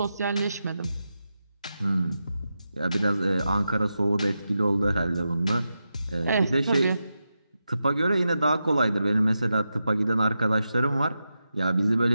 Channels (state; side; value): inverted; both; correlation -0.89